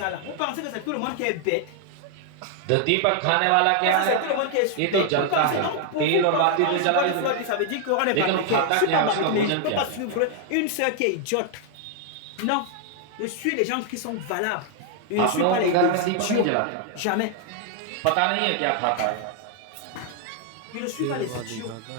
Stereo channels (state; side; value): different; both; correlation 0.00